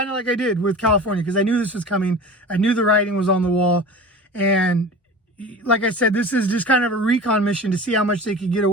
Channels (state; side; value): normal; both; correlation 0.36